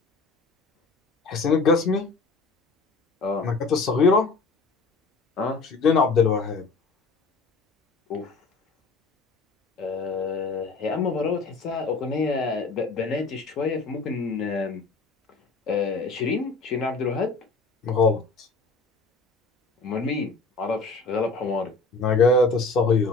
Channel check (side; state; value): right; quieter; 3.8 dB